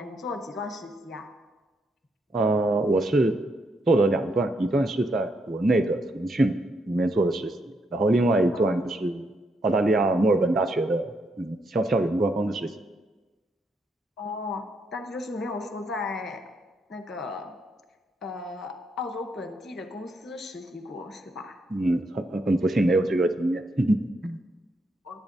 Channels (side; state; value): both; normal; correlation 0.77